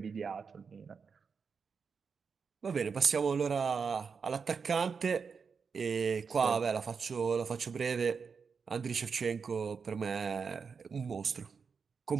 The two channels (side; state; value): left; quieter; 5.7 dB